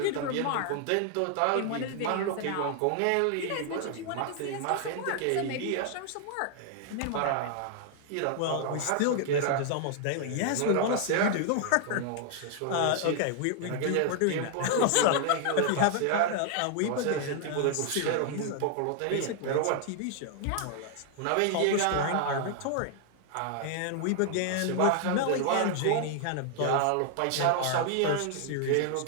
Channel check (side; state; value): both; different; correlation 0.00